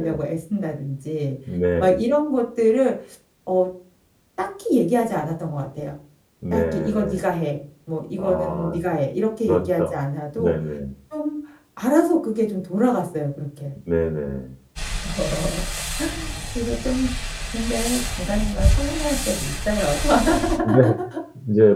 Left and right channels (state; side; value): identical; both; correlation 1.00